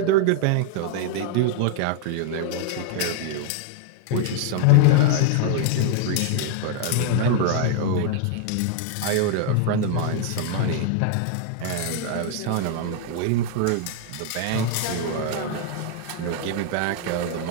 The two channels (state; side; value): different; both; correlation 0.00